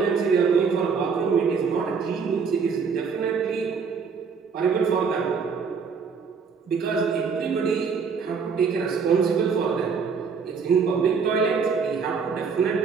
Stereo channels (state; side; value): quieter; left; 5.7 dB